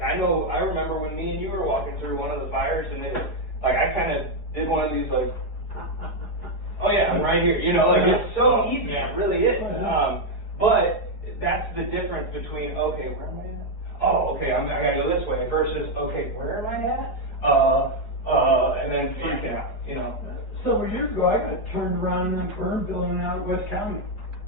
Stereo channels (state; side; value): late; right; 4.7 ms